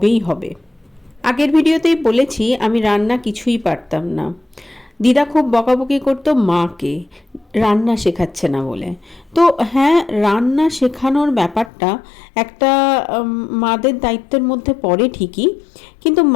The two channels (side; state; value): right; drops out; at 11.7 s